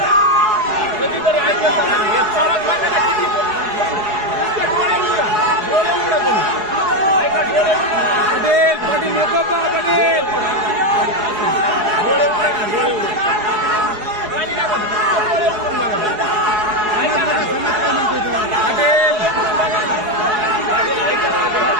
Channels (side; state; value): left; late; 4.8 ms